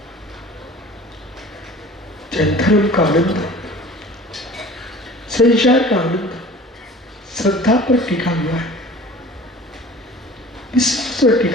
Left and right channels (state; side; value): normal; both; correlation 0.44